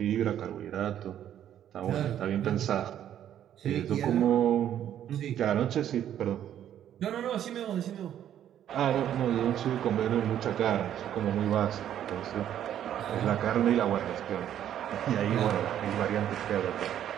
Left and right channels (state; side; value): quieter; left; 10.6 dB